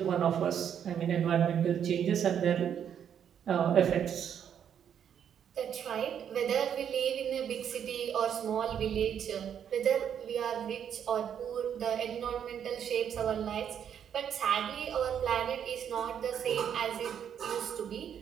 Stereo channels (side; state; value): left; quieter; 8.7 dB